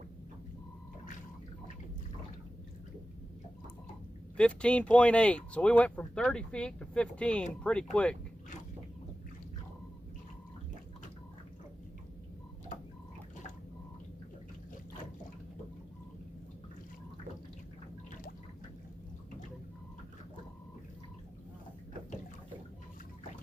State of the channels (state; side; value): normal; both; correlation 0.94